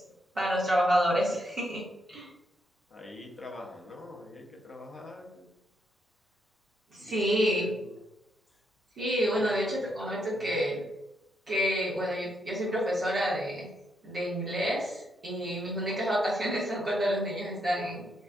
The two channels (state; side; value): normal; both; correlation 0.78